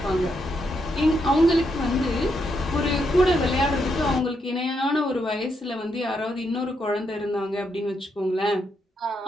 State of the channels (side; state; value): both; normal; correlation 0.79